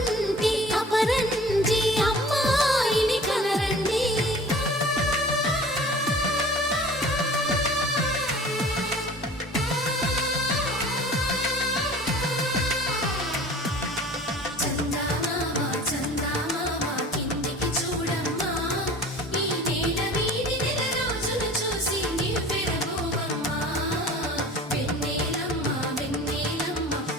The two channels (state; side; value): normal; both; correlation 0.44